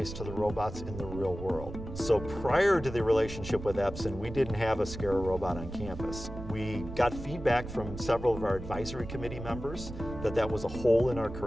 to the robots in the real world. So prior to the relationship with Epson, we didn't have a SCARA robot on campus. We got feedback from several of our advisory committee members that that was a hole in our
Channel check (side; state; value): right; noise; rumble, 10 dB below the sound